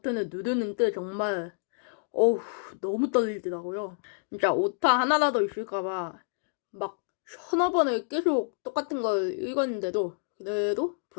누르는데 정말 너무 떨리더라고요. 진짜 오타 하나라도 있을까봐 막 서너 번을 계속 똑같은 걸 읽었는데도 그래도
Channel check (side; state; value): right; silent; digital silence